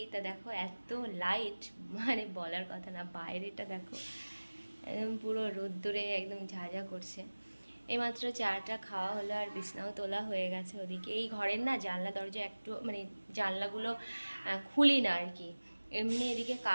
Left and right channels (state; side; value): inverted; both; correlation -1.00